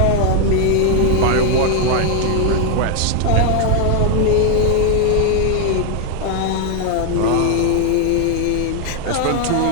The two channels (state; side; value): different; both; correlation 0.00